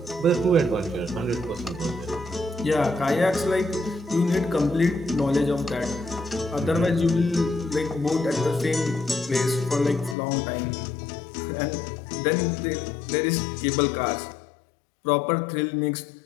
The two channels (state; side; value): drops out; right; at 10.2 s